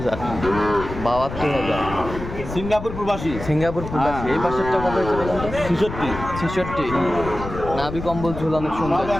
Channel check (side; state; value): left; noise; rumble, 9 dB below the sound